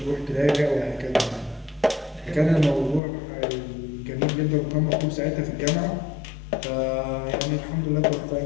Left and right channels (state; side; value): drops out; right; at 3.0 s